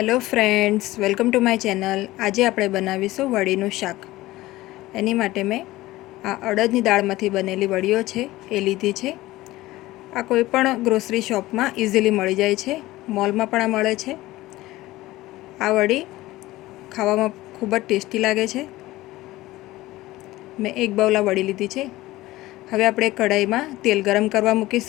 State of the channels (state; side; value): quieter; right; 17.7 dB